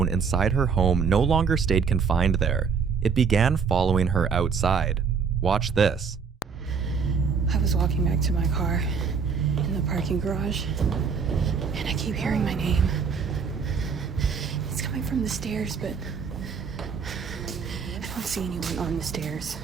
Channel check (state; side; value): quieter; left; 6.0 dB